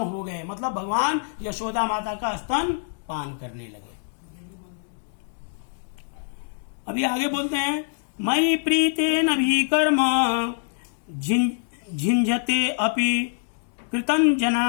गए, मतलब भगवान यशोदा माता का स्तन पान करने लगे। अभी आगे बोलते हैं, मयि प्रीतेन भी कर्म झिंझते अपि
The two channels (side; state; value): right; silent; digital silence